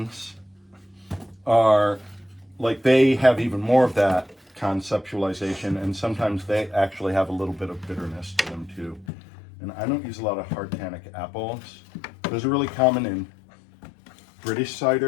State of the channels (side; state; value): right; drops out; at 9.1 s